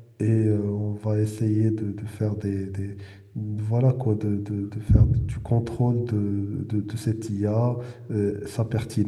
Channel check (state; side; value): identical; both; correlation 1.00